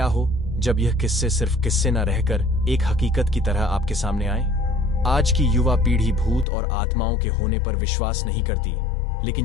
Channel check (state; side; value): drops out; right; at 6.5 s